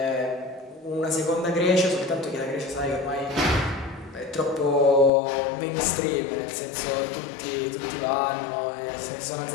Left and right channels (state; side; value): drops out; right; at 5.1 s